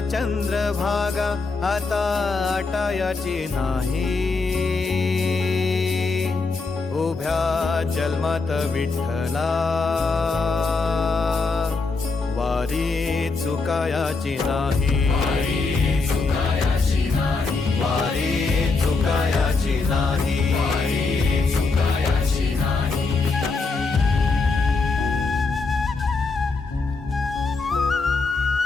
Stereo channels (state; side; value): quieter; right; 4.1 dB